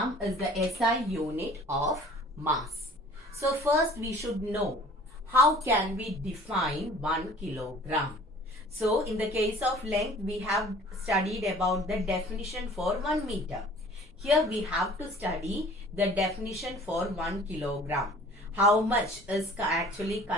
is the SI unit of mass. So, first we should know how can we define 1 kilogram. So, in the case of length, we have studied about the definition for 1 meter. Here we have to study the definition for 1 kilogram. How much is actually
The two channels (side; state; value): both; normal; correlation 0.49